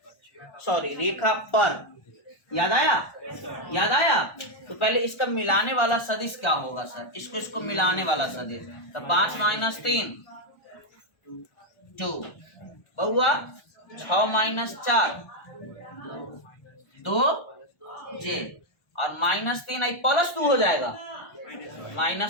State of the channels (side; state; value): right; late; 1.3 ms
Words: सॉरी रेखा पर, याद आया? याद आया? तो पहले इसका मिलाने वाला सदिश क्या होगा सर? इसको मिलाने वाला सदिश, तो 5 - 3 2, बउआ 6 - 4 2j और -3 +2 हो जाएगा